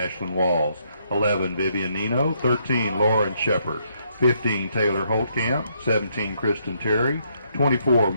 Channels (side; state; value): both; inverted; correlation -0.73